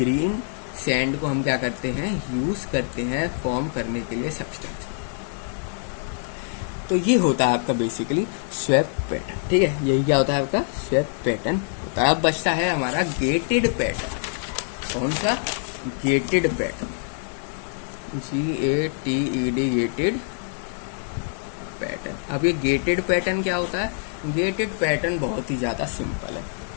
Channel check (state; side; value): silent; right; digital silence